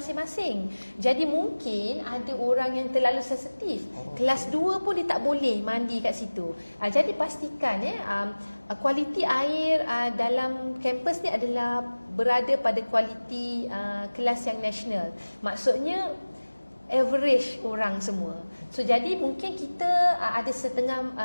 Jadi mungkin ada orang yang terlalu sensitif, kelas 2 pun dia tak boleh mandi kat situ. Jadi pastikan kualiti air dalam kampus ni adalah berada pada kualiti kelas yang nasional. Maksudnya average orang semua. So jadi mungkin kita ada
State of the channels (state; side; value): inverted; both; correlation -1.00